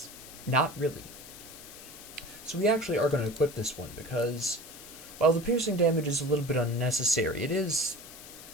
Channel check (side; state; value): left; noise; hiss, 15 dB below the sound